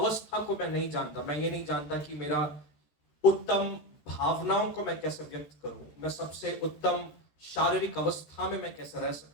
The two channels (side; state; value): right; late; 13 ms